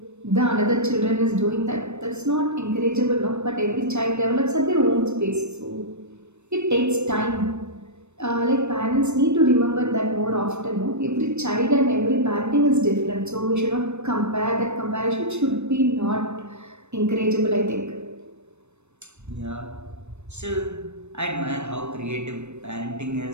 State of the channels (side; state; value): left; late; 0.82 ms